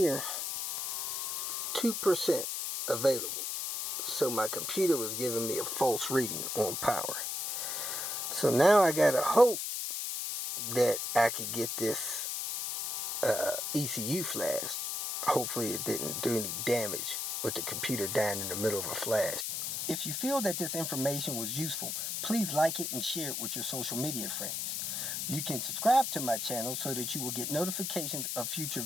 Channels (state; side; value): noise; left; hiss, 2 dB below the sound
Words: 2% available. So my computer was giving me a false reading on power. So now I gotta hope that I could get this ECU flashed. Hopefully it didn't do any damage with the computer dying in the middle of a flash. If you feel that this information was useful, please like it and share it with your social media friends. You can subscribe to my channel so that you will get notifications of future